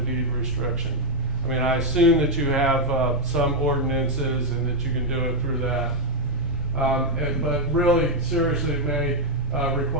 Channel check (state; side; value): normal; both; correlation 0.01